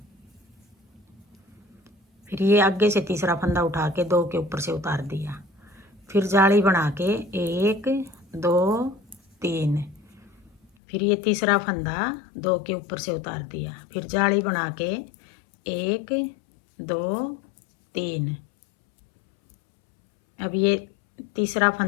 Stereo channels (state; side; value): drops out; right; at 10.7 s